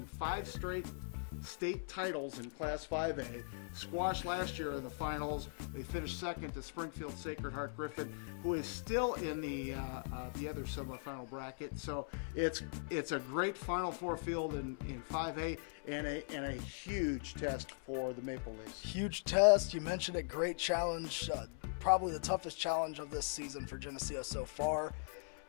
5 straight state titles in Class 5A, squashed last year in the finals. They finished second to Springfield Sacred Heart Griffin, who is still in the other semifinal bracket. So it's a great Final Four field in 5A and a huge test for the Maple Leafs. Huge test. You mentioned it. Great challenge. Probably the toughest challenge of this season for Geneseo so far.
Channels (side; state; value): right; silent; 51 dB below the other